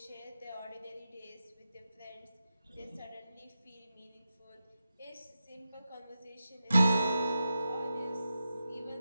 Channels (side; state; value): both; inverted; correlation -0.89